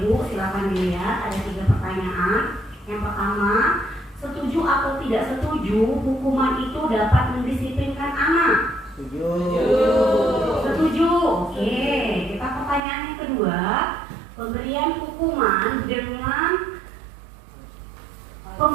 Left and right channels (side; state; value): left; drops out; at 12.8 s